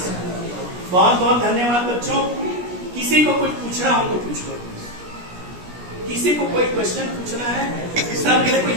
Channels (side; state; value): left; late; 17 ms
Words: बहुत बहुत धन्यवाद बच्चों। किसी को कुछ पूछना हो तो पूछ लो, किसी को कोई क्वेश्चन पूछना है, सर मेरे को